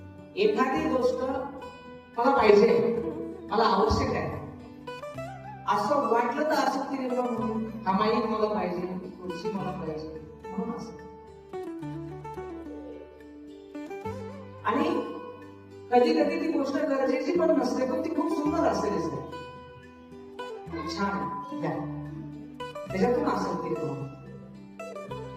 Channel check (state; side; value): identical; both; correlation 1.00